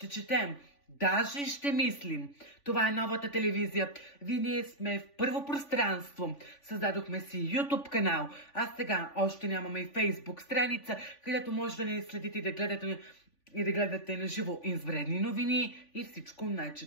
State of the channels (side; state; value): right; late; 3.5 ms